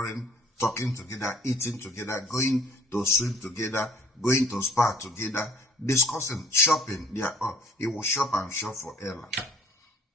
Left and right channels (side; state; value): both; normal; correlation 0.56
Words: talking together, eating together, going to swim together, going to spa together, discussing, shopping. He will shop and shop for Ella.